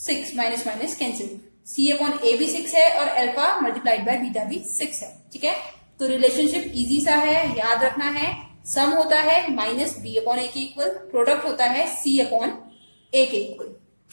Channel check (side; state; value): both; inverted; correlation -1.00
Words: minus minus cancel, c/a भी 6 है और अल्फा मल्टीप्लाइड बाय बीटा भी 6 है, ठीक है। तो रिलेशनशिप इजी सा है, याद रखना है। सम होता है -b/a के इक्वल, प्रोडक्ट होता है c/a के इक्वल।